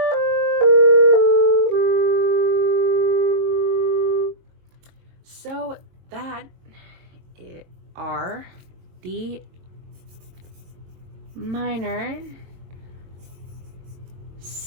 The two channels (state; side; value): late; left; 22 ms